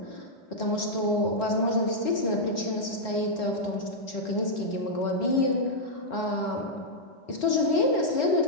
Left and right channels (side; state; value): right; late; 4.1 ms